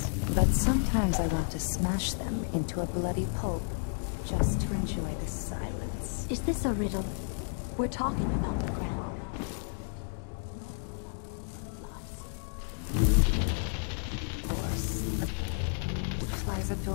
but sometimes I want to smash them into a bloody pulp, just to enjoy the silence. Is this a riddle? We're talking about the Grand Guard, right? Not the lovely blood flies. Of course. Flies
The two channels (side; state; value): right; silent; digital silence